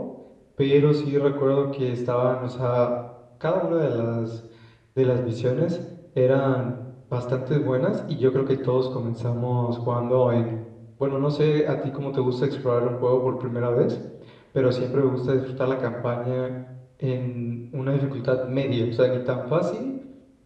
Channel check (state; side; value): identical; both; correlation 1.00